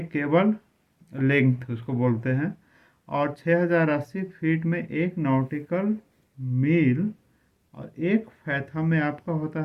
केबल लेंथ उसको बोलते हैं, और 6080 फीट में एक नॉटिकल मील, और एक फैथम में आपका होता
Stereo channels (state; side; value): identical; both; correlation 1.00